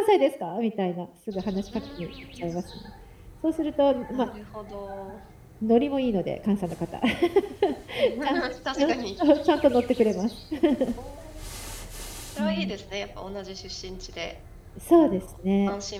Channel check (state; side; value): identical; both; correlation 1.00